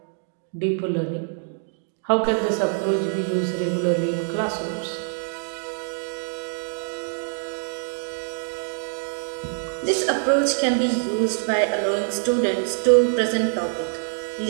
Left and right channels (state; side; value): silent; left; digital silence